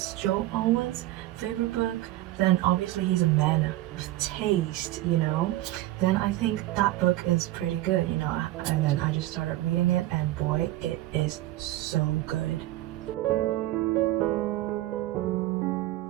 Joel Alwyn's favorite book, then obviously he's a man with taste, you know? Then I think that book is pretty good, you know? And then I just started reading it, and boy, it is so good.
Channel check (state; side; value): quieter; left; 16.3 dB